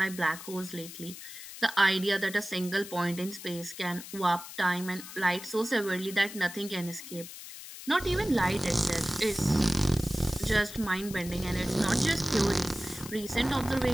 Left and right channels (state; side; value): noise; left; hiss, 13 dB below the sound